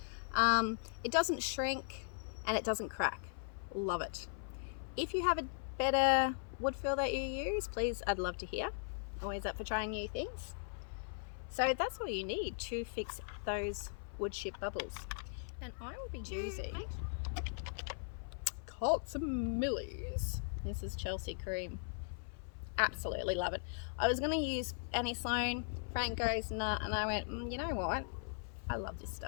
It doesn't shrink and it doesn't crack. Love it. If you have a better wood feel that you use, please, I'd love to hear. Always up for trying new things. So that's all you need to fix those wood chip bubbles. And I will be using Millie's. This is Chelsey cream. Absolutely love it. I was going to use Annie Sloan. Frank goes, nah, and I went, you know what? I love this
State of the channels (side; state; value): right; silent; 52 dB below the other